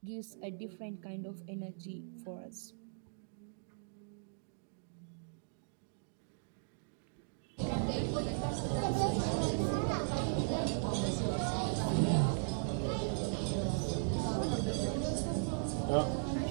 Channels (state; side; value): silent; left; digital silence